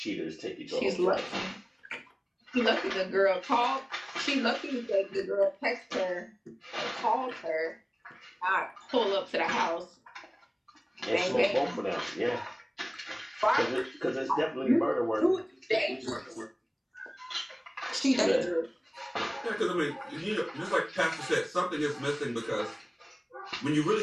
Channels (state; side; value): identical; both; correlation 1.00